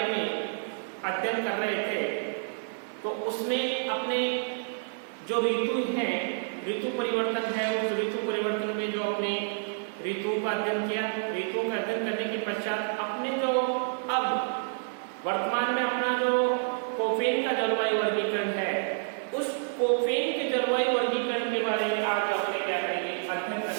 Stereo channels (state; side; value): silent; left; digital silence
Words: में अध्ययन कर रहे थे तो उसमें अपने जो ऋतु हैं, ऋतु परिवर्तन है, उस ऋतु परिवर्तन में जो अपने ऋतु का अध्ययन किया। ऋतु का अध्ययन करने के पश्चात अपने जो अब वर्तमान में अपना जो कोपेन का जलवायु वर्गीकरण है, उस कोपेन के जलवायु वर्गीकरण के बारे में आज अपने क्या करेंगे, अध्ययन